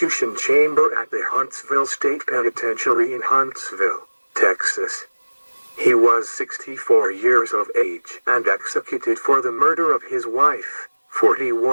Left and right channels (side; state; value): both; inverted; correlation -1.00